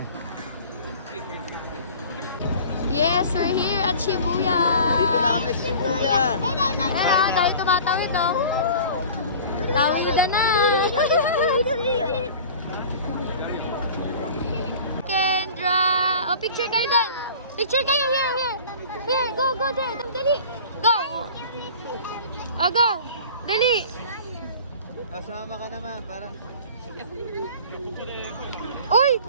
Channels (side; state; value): both; inverted; correlation -0.42